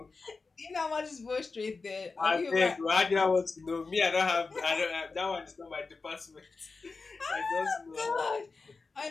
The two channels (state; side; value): quieter; right; 4.2 dB